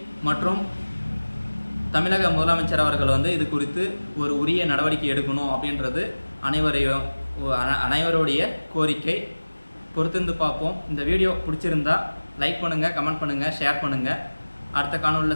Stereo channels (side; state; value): both; inverted; correlation -1.00